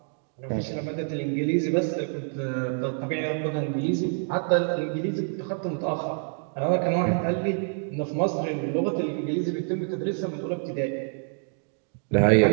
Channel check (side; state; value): left; silent; 60 dB below the other